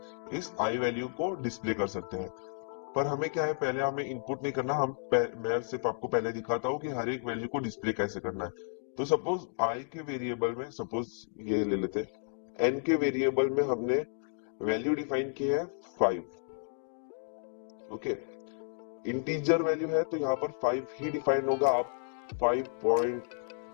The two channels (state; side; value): silent; right; digital silence